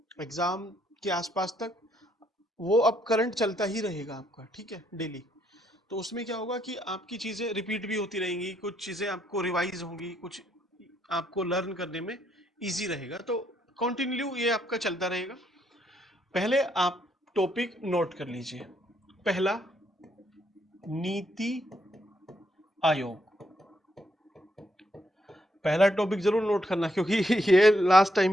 एग्जाम के आसपास तक। वो अब करंट चलता ही रहेगा आपका, ठीक है, डेली। तो उसमें क्या होगा कि आपकी चीज़ें रिपीट भी होती रहेंगी, कुछ चीज़ें आपको रिवाइज होंगी, कुछ आपको लर्न करने में इजी रहेगा। तो कंटिन्यू ये आपका चलता रहेगा। पहले आप टॉपिक नोट कर लीजिए। पहला, नीति आयोग। पहला टॉपिक जरूर नोट करना, क्योंकि ये लास्ट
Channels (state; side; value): normal; both; correlation 0.74